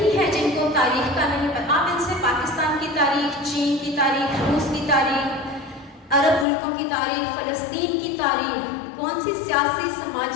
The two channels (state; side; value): drops out; right; at 6.5 s